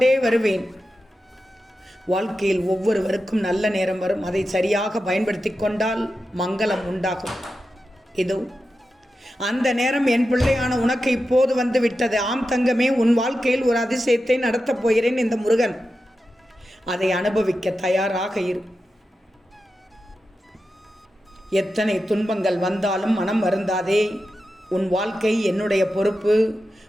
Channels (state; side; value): normal; both; correlation 0.91